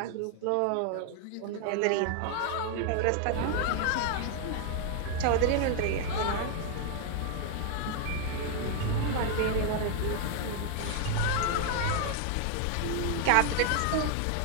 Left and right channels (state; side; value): different; both; correlation 0.00